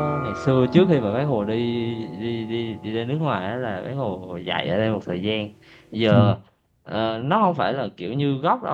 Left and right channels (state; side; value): identical; both; correlation 1.00